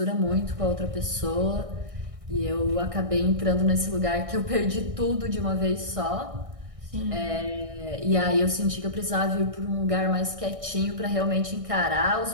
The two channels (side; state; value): left; late; 1.6 ms